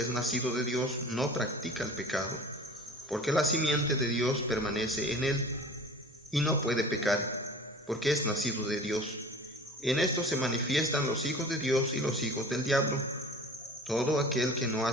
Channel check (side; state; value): both; normal; correlation 0.41